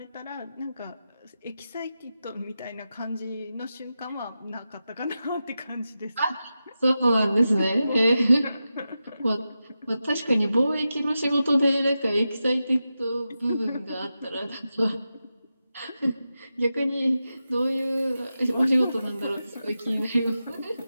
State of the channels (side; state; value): both; inverted; correlation -0.91